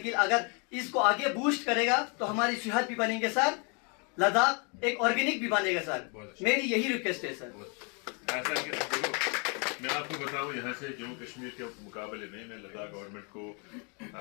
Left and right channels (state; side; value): quieter; right; 35.0 dB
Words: अगर इसको आगे बूस्ट करेगा तो हमारी सेहत भी बनेंगे सर, लद्दाख एक ऑर्गेनिक भी बनेगा सर। मेरी यही रिक्वेस्ट है सर। ऐसा कि देखो, मैं आपको बताऊं, यहाँ से जम्मू कश्मीर के मुकाबले में मैं लद्दाख गवर्नमेंट को